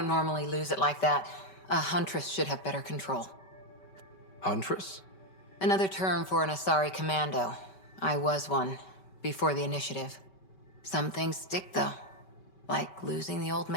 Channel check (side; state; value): right; late; 5.2 ms